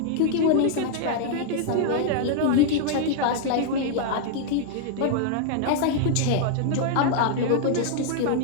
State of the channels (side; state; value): both; different; correlation -0.01